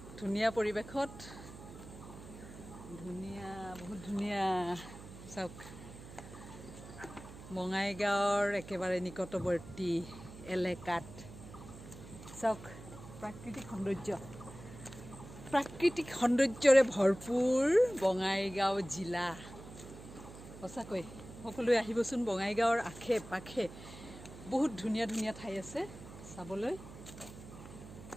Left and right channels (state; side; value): noise; right; hum, 15 dB below the sound